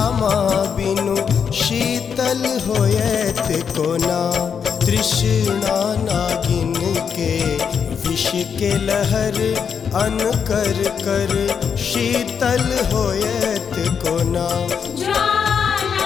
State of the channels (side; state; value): right; quieter; 6.9 dB